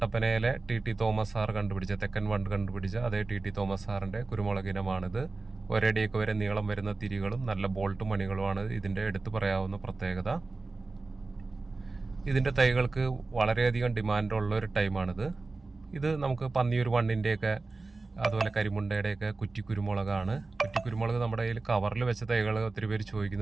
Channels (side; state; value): left; quieter; 3.6 dB